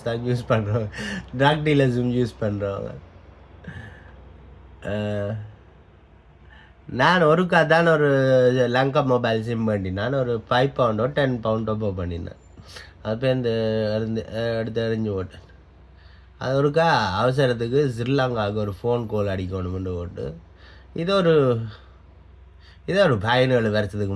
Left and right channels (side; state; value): both; identical; correlation 1.00